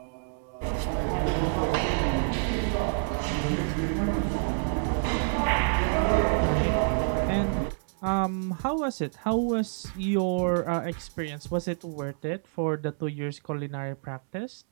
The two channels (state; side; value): silent; left; 59 dB below the other